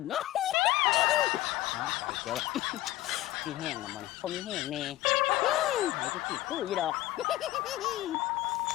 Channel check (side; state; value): right; quieter; 16.2 dB